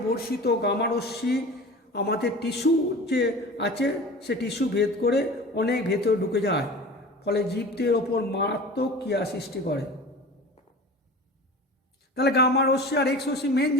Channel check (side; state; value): both; normal; correlation 0.37